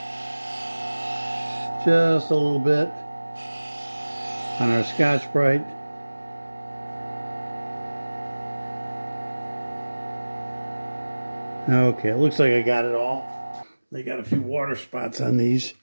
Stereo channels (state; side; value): inverted; both; correlation -1.00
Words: just a little bit on our Scotch-Brite. Okay, it looks like I got it all. They got a few water spots on these,